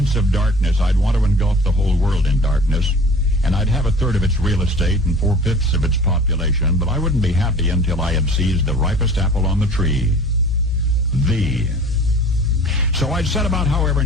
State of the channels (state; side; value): normal; both; correlation 0.45